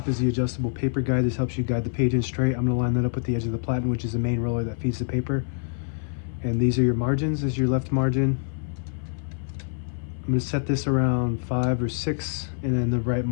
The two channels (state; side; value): silent; right; 56 dB below the other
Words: is the adjustable paper guide. This helps you guide the page in straight. I'm going to line that up with the edge of the platen, which is the main roller that feeds the paper. And these are your margins. This is your left margin. I'm going to set this around 5 or 6, and then the right